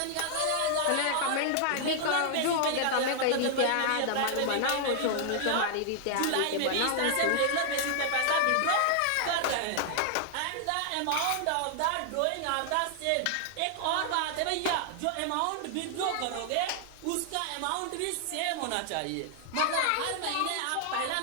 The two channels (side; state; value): both; different; correlation -0.01